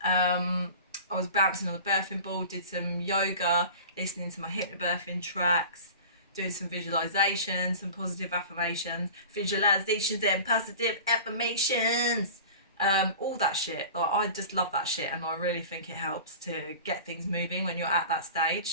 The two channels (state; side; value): inverted; both; correlation -0.37